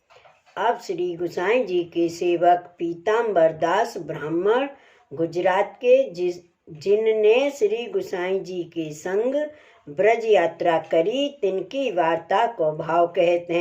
अब श्री गोसाई जी के सेवक पीताम्बर दास ब्राह्मण गुजरात के जिनने श्री गोसाई जी के संग ब्रज यात्रा करी, तिनकी वार्ता को भाव कहते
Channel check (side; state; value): both; identical; correlation 1.00